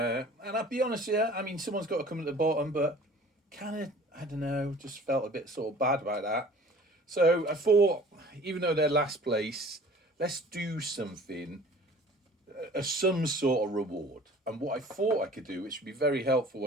I'll be honest here, I mean, someone's got to come at the bottom, but kind of, I don't know, just felt a bit sort of bad about that. So I thought, even though they're last place, let's do something, some sort of reward. And what I thought I could do, which would be very helpful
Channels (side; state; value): both; normal; correlation 0.48